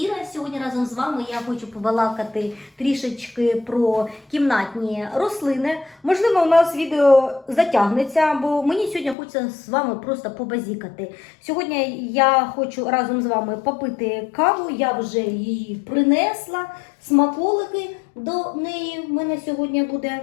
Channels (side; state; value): right; drops out; at 9.2 s